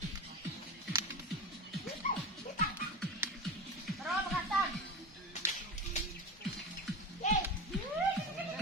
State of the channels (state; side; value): normal; both; correlation 0.24